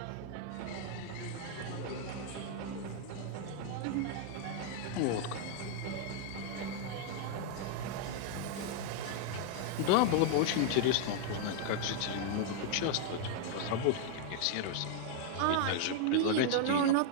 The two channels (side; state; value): both; different; correlation 0.00